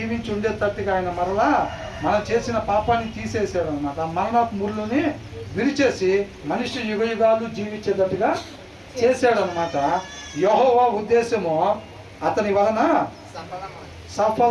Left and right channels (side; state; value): both; identical; correlation 1.00